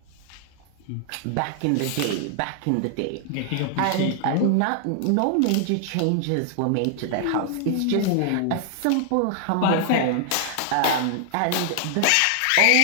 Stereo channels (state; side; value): different; both; correlation 0.00